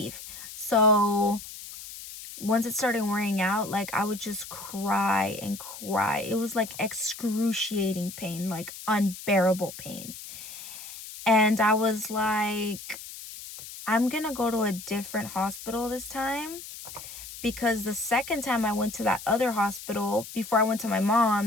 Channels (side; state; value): left; noise; hiss, 13 dB below the sound